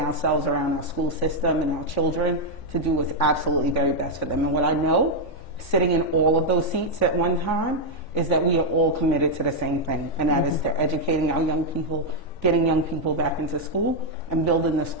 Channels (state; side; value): late; right; 3.5 ms